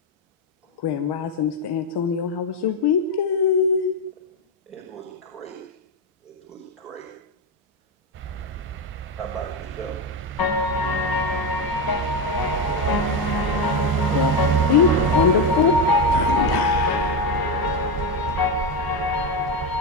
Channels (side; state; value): both; normal; correlation 0.11